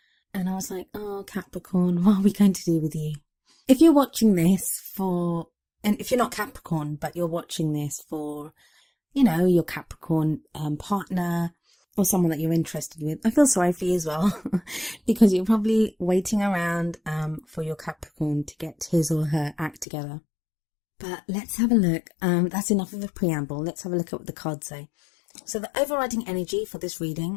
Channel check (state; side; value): drops out; right; at 19.9 s